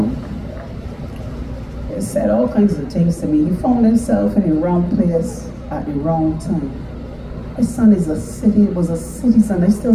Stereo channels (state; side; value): identical; both; correlation 1.00